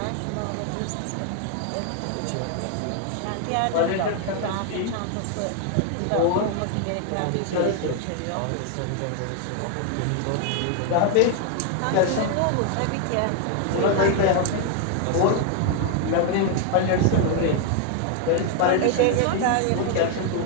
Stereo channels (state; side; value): different; both; correlation 0.00